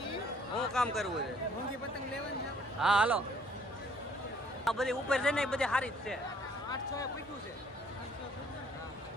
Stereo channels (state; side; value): normal; both; correlation 0.61